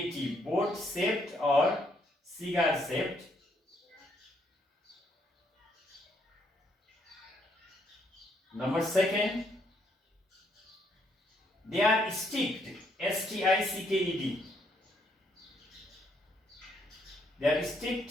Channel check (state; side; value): normal; both; correlation 0.72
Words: boat shaped or cigar shaped. Number 2, they are sticked, S-T-I-C-K-E-D. They are